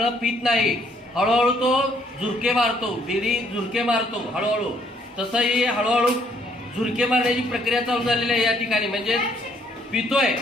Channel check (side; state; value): both; normal; correlation 0.66